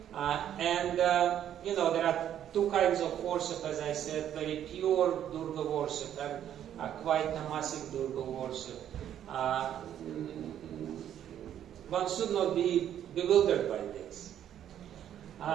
There are 2 kinds of worship, as I said, very pure Durga worship and quite tamasic Durga worship. One should not be bewildered by this.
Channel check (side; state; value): left; quieter; 10.4 dB